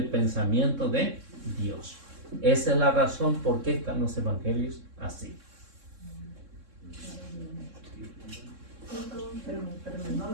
pensamiento de Dios. Esa es la razón por qué están los evangelios así. Espérame, no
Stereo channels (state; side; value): late; left; 3.6 ms